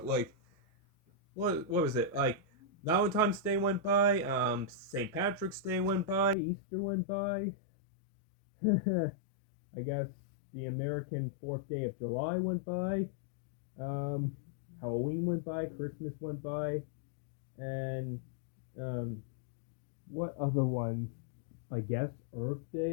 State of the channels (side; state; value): right; drops out; at 6.4 s